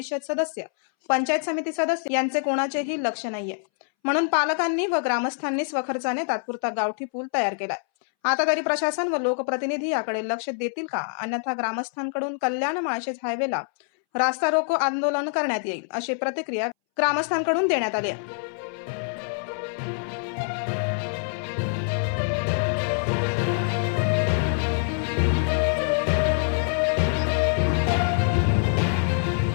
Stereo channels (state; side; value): silent; right; 62 dB below the other